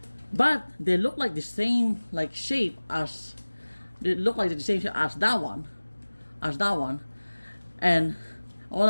But they look like the same like shape as that one, and I was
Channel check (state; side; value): inverted; both; correlation -1.00